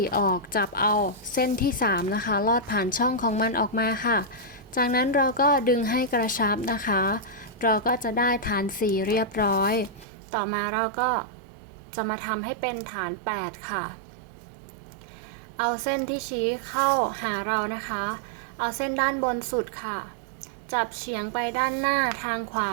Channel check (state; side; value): drops out; left; at 10.1 s